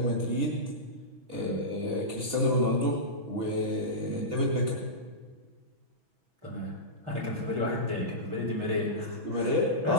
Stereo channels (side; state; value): left; late; 6.1 ms